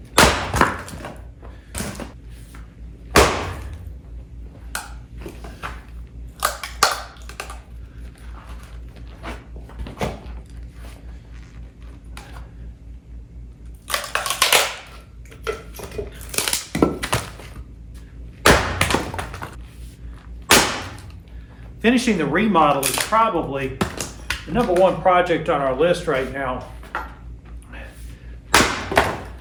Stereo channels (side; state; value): both; identical; correlation 1.00